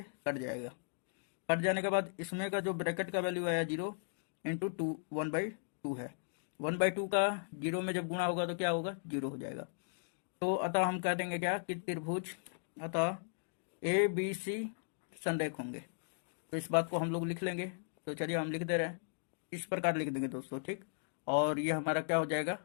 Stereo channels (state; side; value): silent; right; digital silence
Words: कट जाएगा। कट जाने के बाद इसमें का जो ब्रैकेट का वैल्यू आया 0 इंटू 2 1/2 है। 1/2 का 0 में जब गुणा होगा तो क्या होगा, 0 हो जाएगा। तो अतः हम कह देंगे क्या कि त्रिभुज अतः ए बी सी संरेख होंगे। तो इस बात को हम लोग लिख लेंगे। तो चलिए हम लिख दे रहे हैं, इस प्रकार लिख देंगे दोस्तों, ठीक। और ये हमारा क्या हो जाएगा,